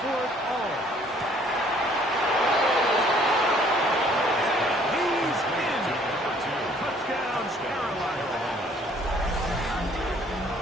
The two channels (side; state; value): both; normal; correlation 0.59